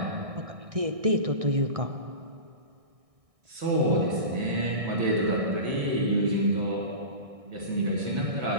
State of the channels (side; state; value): left; late; 1.6 ms